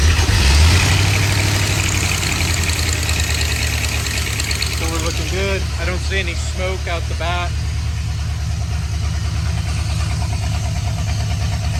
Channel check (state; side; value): identical; both; correlation 1.00